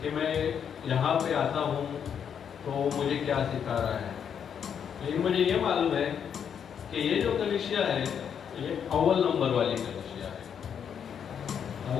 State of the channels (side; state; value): right; quieter; 7.9 dB